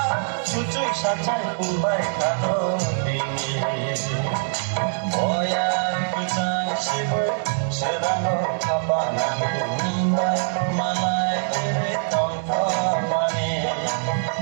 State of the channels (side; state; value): left; silent; 63 dB below the other